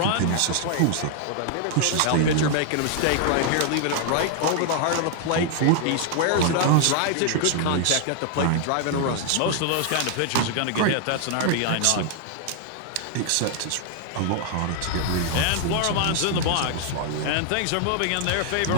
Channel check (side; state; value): both; different; correlation 0.00